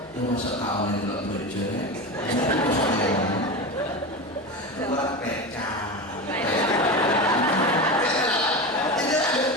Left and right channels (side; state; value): left; noise; hum, 29 dB below the sound